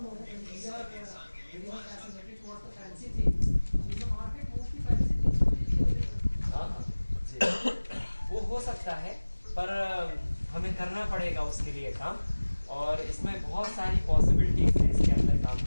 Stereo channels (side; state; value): both; inverted; correlation -1.00